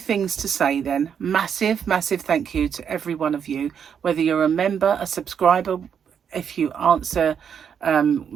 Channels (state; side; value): quieter; left; 7.7 dB